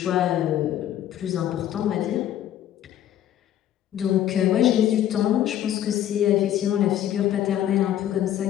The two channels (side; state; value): right; quieter; 11.5 dB